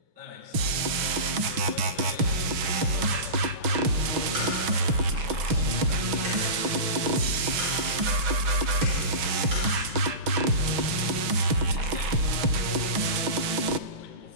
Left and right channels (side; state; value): left; late; 6.2 ms